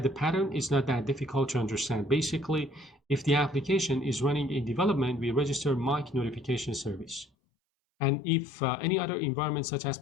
the pattern. It's not that difficult to understand. Basically, if the application is running in development, we register mock notification service. And if any other environment such as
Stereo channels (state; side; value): drops out; right; at 7.2 s